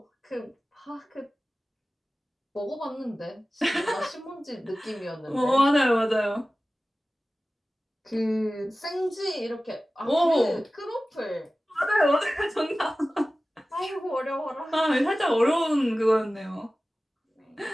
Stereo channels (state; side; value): normal; both; correlation 0.96